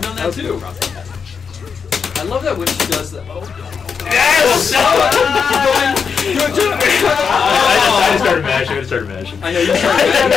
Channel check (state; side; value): quieter; right; 6.1 dB